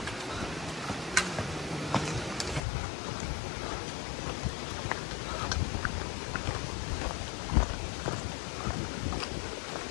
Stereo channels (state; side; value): drops out; right; at 2.6 s